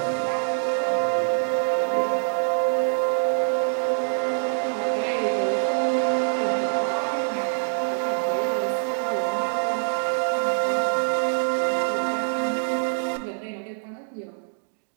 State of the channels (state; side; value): silent; left; digital silence